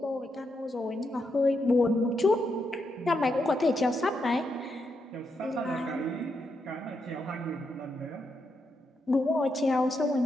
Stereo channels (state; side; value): normal; both; correlation 0.82